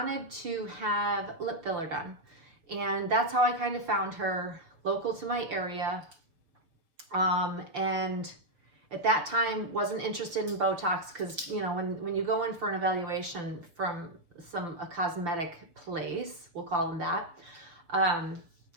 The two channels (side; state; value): left; late; 6.0 ms